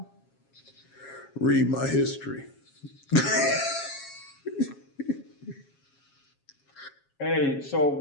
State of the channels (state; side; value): late; right; 7.3 ms